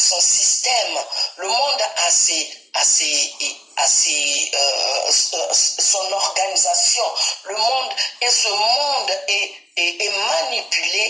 système, le monde a son organisation. Le monde, et ce monde est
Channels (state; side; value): normal; both; correlation 0.95